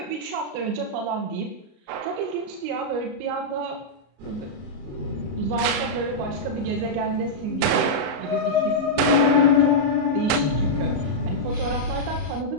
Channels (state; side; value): late; left; 33 ms